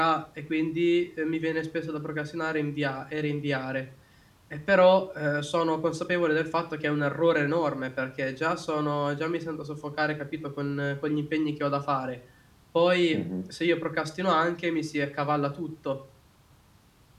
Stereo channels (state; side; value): identical; both; correlation 1.00